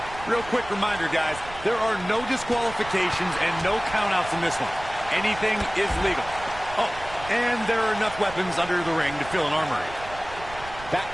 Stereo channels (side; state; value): right; noise; rumble, 15 dB below the sound